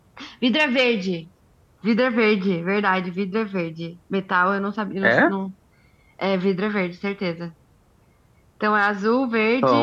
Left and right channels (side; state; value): both; identical; correlation 1.00